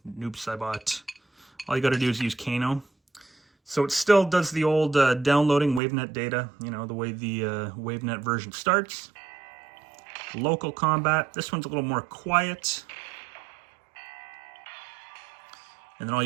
Noob Saibot. All you got to do is use Kano. So it still does the old downloading WaveNet data, the way the WaveNet version starts. Local combat. This one's a little more quiet. And then all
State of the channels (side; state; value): left; drops out; at 5.8 s